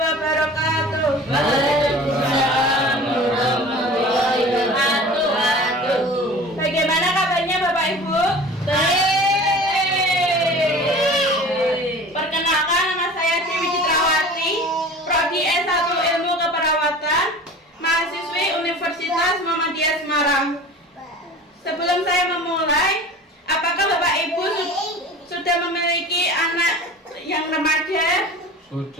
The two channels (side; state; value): both; normal; correlation 0.40